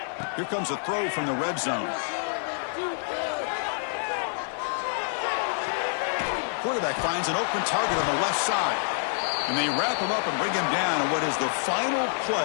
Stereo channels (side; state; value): right; silent; 59 dB below the other